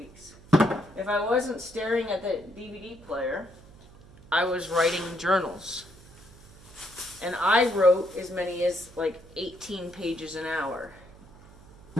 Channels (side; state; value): right; noise; hum, 22 dB below the sound